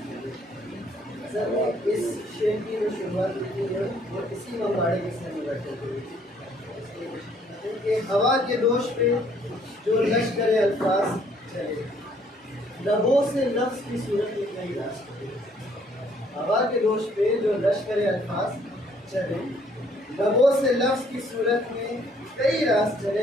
سر نے اس شعر کی جو شروعات کی ہے وہ اسی مواڑے کے سر میں بیٹھے ہوئے کہ ہوا کے دوش پہ جو لشکر الفاظ چلے، لبوں سے لفظ کی صورت میں کئی راز چلے۔ ہوا کے دوش پہ جو لشکر الفاظ چلے، لبوں سے لفظ کی صورت میں کئی راز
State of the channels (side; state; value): both; normal; correlation 0.63